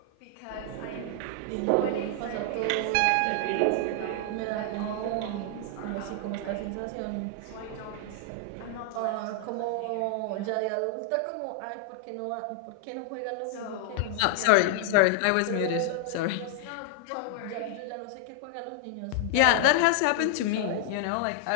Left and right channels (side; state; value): both; different; correlation -0.01